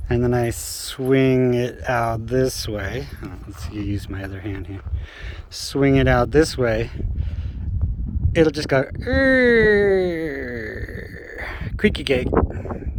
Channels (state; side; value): identical; both; correlation 1.00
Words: and then I swing it out this way. Let's use my other hand here. Swing it out this way. It'll just go creaky gate,